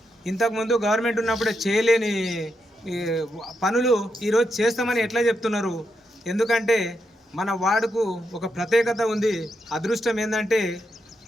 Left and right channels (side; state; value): both; normal; correlation 0.83